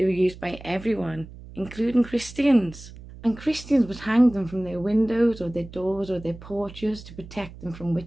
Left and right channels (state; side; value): noise; right; hum, 16 dB below the sound